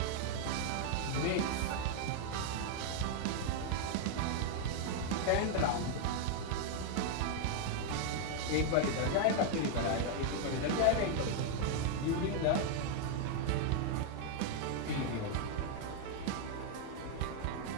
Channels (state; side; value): different; both; correlation 0.00